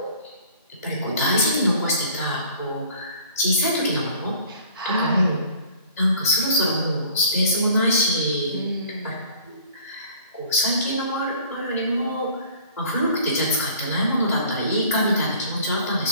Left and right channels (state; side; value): inverted; both; correlation -0.50